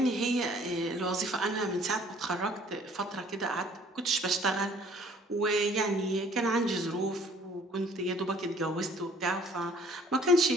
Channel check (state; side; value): normal; both; correlation 0.56